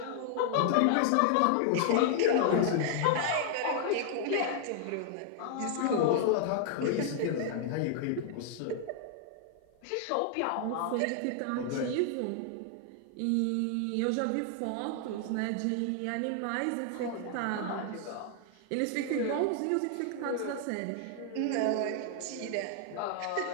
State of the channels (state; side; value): different; both; correlation 0.00